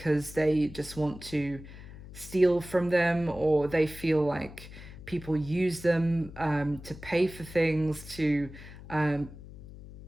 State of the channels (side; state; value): left; noise; hum, 15 dB below the sound